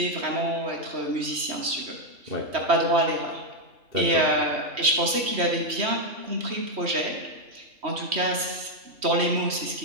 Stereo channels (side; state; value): left; late; 3.1 ms